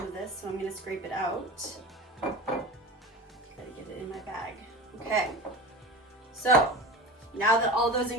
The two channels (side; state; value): both; normal; correlation 0.31